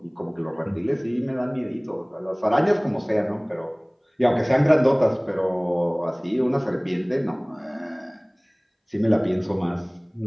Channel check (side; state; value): both; identical; correlation 1.00